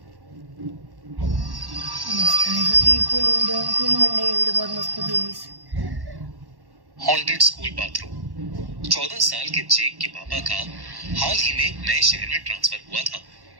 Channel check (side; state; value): left; late; 1.1 ms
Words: मस्त है, सच्ची खूनी मंडे की वीडियो बहुत मस्त होती है इस। Haunted school bathroom. 14 साल के जेक के पापा का हाल ही में एक नए शहर में ट्रांसफर हुआ था,